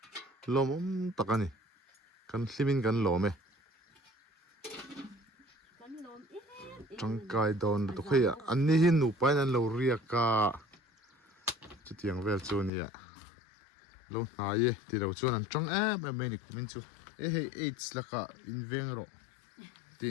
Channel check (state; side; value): drops out; right; at 12.7 s